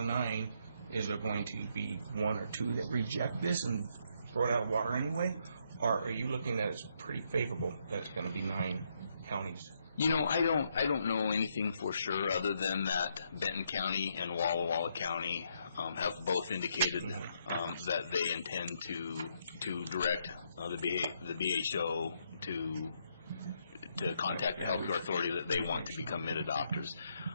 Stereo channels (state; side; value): inverted; both; correlation -0.75